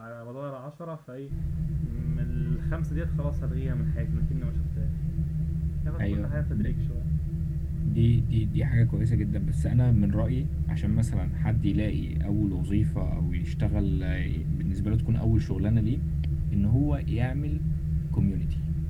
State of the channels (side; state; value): both; identical; correlation 1.00